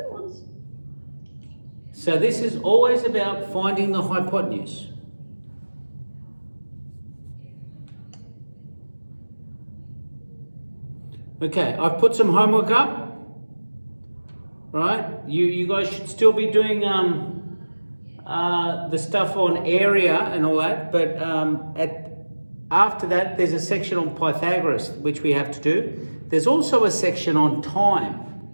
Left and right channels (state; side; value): inverted; both; correlation -1.00